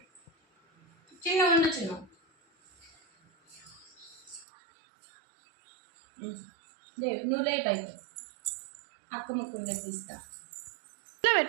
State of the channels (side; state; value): left; drops out; at 4.5 s